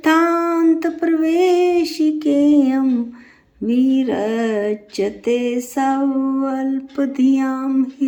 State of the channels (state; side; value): identical; both; correlation 1.00